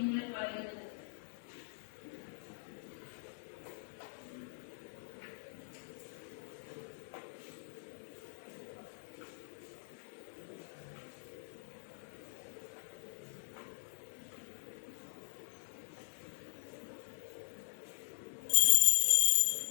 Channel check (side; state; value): right; silent; digital silence